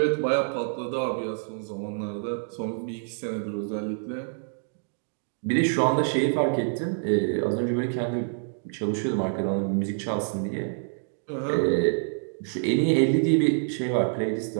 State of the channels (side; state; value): left; silent; digital silence